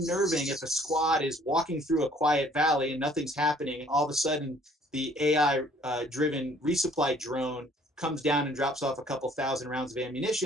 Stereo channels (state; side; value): normal; both; correlation 0.58